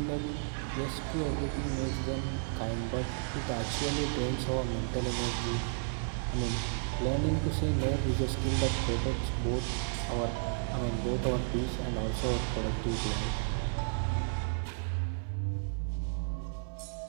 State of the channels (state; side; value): silent; left; 56 dB below the other